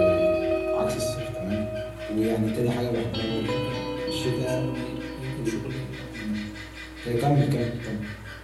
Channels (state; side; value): identical; both; correlation 1.00